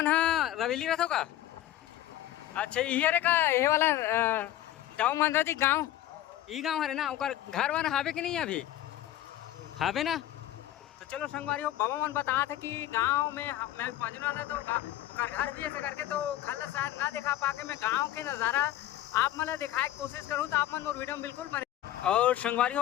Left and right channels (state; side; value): quieter; right; 13.6 dB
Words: रवेली रहते हो का? अच्छा ये का ये वाला दाऊ मंदरा जी गांव ई गांव हरे ना ओकर घर वन हावे कि नहीं अभी हावे ना? तो चलो संगवारी हो बाबा मन बता थे कि गांव में मैं पहुंचने वाला तो ओकर घर भी ऐसे करके तो घर शायद ना दिखा पाके मैं गाँव के नज़ारा आप मतलब दिखाए की कोशिश करूँ। तो आप मन मोर वीडियो में बिल्कुल बने। और संगवारी